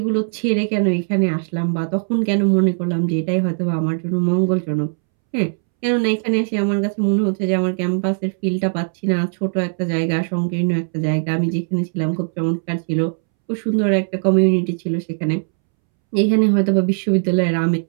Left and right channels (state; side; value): silent; left; 66 dB below the other